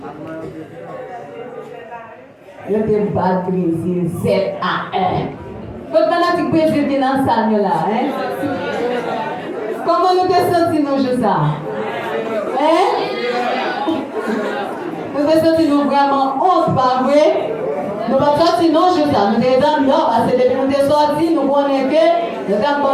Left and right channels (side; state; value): both; identical; correlation 1.00